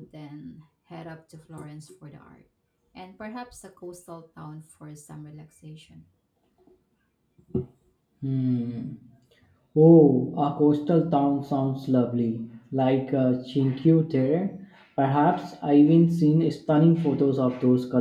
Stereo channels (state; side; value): identical; both; correlation 1.00